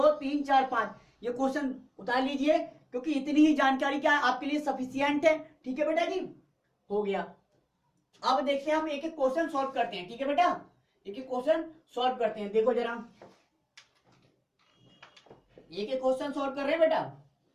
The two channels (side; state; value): both; identical; correlation 1.00